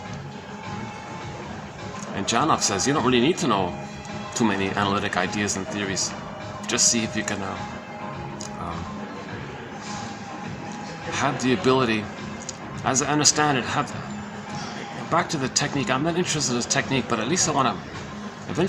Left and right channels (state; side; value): identical; both; correlation 1.00